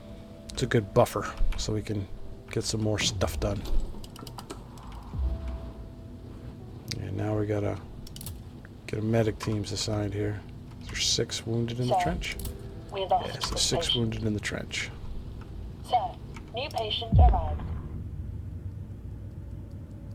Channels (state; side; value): identical; both; correlation 1.00